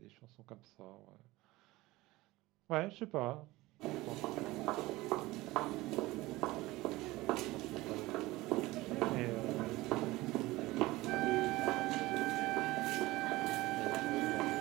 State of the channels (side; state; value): left; quieter; 19.4 dB